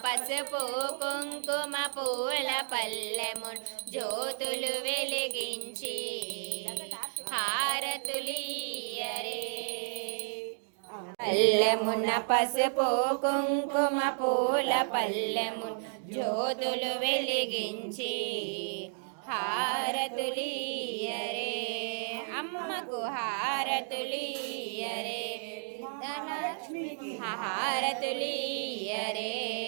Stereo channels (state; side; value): silent; left; digital silence